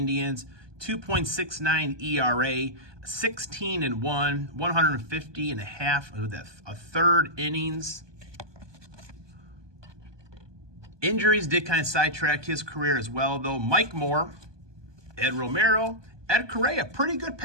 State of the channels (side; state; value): left; late; 1.2 ms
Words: 2.69 ERA, 16-1, 150 and a half, a third innings. Injuries did kind of sidetrack his career as well, though. Mike Moore, Ed Romero, Ed Correa, pretty good